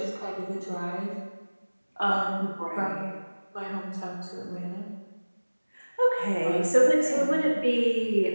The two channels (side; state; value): both; inverted; correlation -1.00